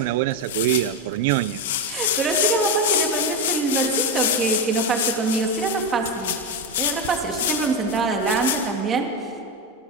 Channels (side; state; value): both; normal; correlation 0.11